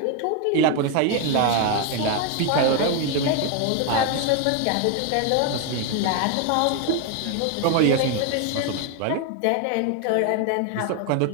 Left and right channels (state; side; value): different; both; correlation 0.01